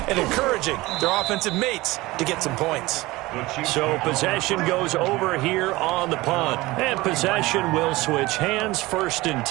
and encouraging their offensive mates to get some points. So possession goes over here on the punt. And possession will switch hands, 1st and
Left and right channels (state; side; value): quieter; left; 20.2 dB